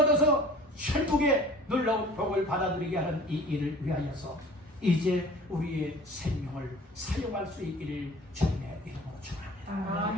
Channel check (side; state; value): both; normal; correlation 0.46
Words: 천국의 놀라운 복을 받아들이게 하는 이 일을 위하여서 이제 우리의 생명을 사용할 수 있기를 주님의 이름으로 축원합니다.